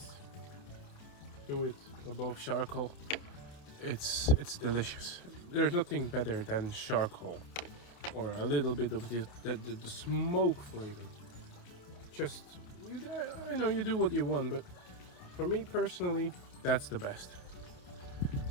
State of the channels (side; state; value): right; late; 28 ms